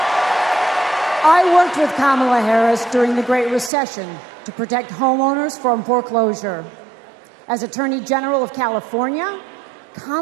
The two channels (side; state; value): left; drops out; at 3.7 s